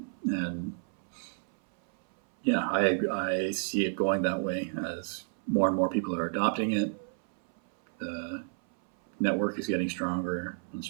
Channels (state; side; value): silent; left; 57 dB below the other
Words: And yeah, I see it going that way as more and more people are adopting it. The network is getting stronger and